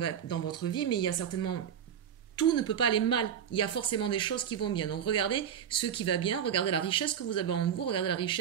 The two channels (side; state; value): left; quieter; 8.6 dB